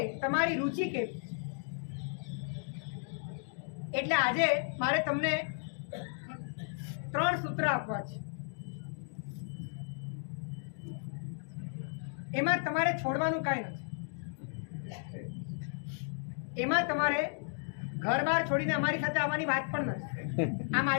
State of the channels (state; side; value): silent; right; digital silence